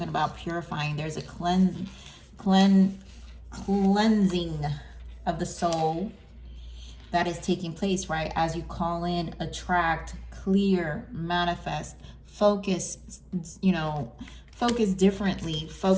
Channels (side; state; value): both; identical; correlation 1.00